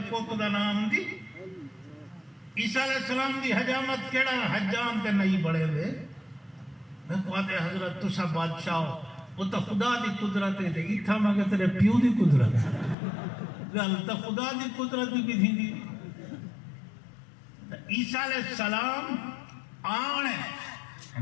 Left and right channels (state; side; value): drops out; right; at 13.0 s